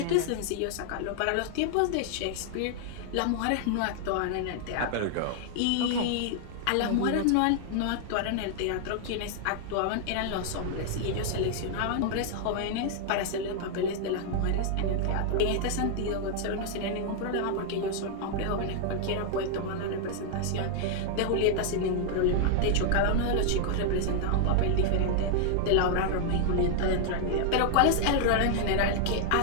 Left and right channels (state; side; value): different; both; correlation -0.01